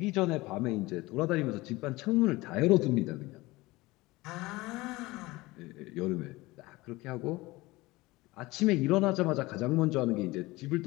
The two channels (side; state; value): right; quieter; 20.8 dB